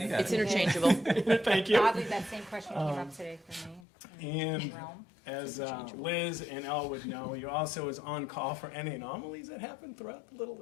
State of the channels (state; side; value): drops out; right; at 3.8 s